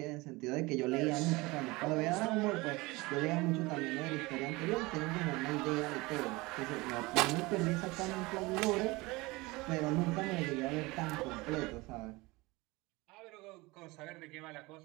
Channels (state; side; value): quieter; left; 22.8 dB